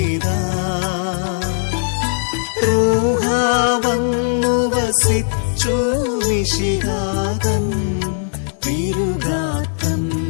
റൂഹാ വന്നു വസിച്ചു മിശിഹാതൻ തിരുഗാത്രം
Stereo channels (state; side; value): silent; right; digital silence